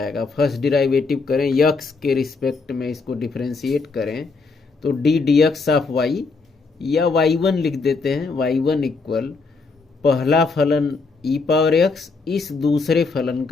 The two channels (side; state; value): right; quieter; 4.3 dB